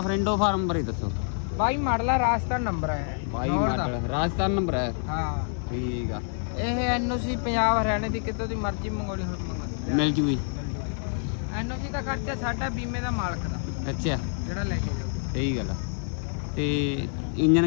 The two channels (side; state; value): right; silent; 59 dB below the other